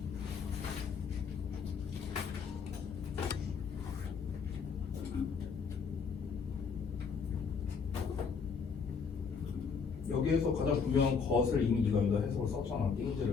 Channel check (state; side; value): quieter; right; 5.7 dB